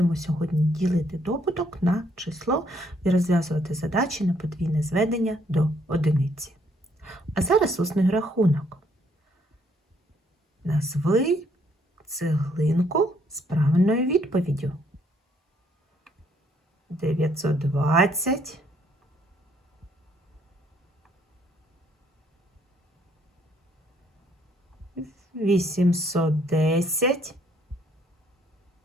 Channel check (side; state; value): both; normal; correlation 0.68